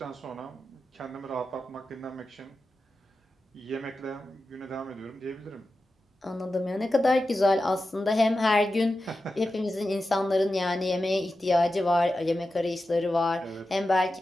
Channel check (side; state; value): both; normal; correlation 0.92